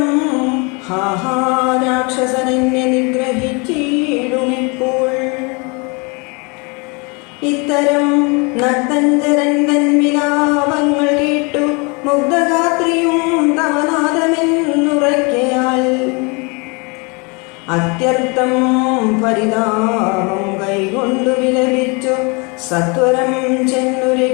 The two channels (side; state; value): right; quieter; 30.6 dB